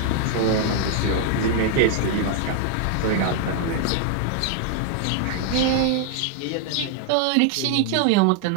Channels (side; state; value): both; different; correlation 0.00